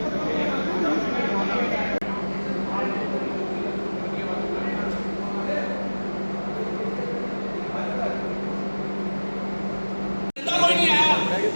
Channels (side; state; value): both; inverted; correlation -1.00